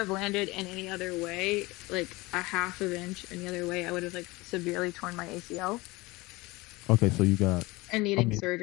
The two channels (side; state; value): right; quieter; 22.2 dB